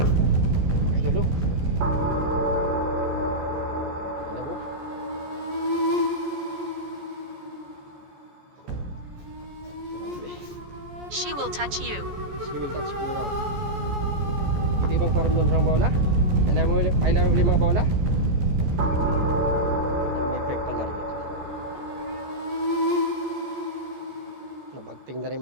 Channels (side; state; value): left; late; 14 ms